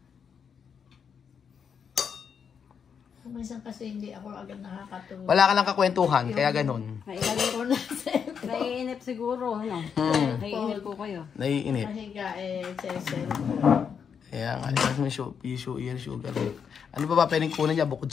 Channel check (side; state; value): right; quieter; 6.9 dB